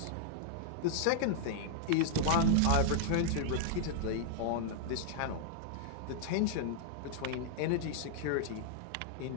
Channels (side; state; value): both; different; correlation -0.01